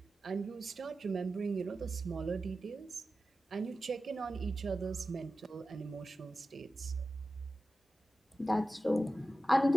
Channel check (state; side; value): normal; both; correlation 0.94